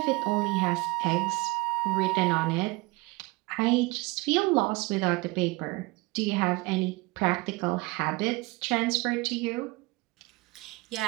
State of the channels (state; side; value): quieter; left; 23.2 dB